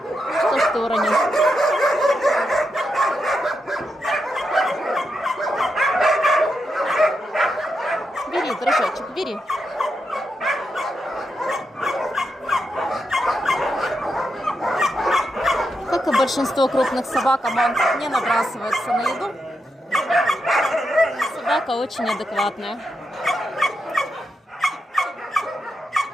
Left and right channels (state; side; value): normal; both; correlation 0.85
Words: что ж ты уронил? Бери, дружочек, бери. Как и большинство крупных собак, Аман не набрасывается на еду. Собака очень адекватная.